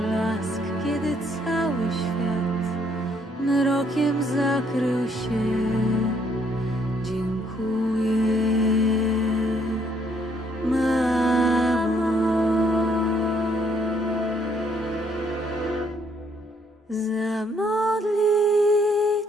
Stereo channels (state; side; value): normal; both; correlation 0.68